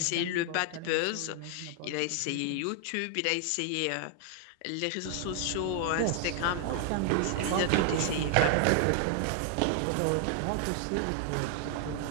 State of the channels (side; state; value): both; different; correlation 0.00